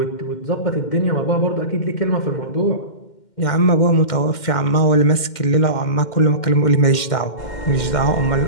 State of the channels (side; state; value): right; late; 2.1 ms